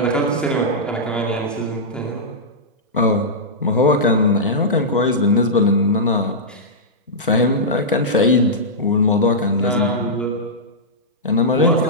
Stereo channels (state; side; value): normal; both; correlation -0.12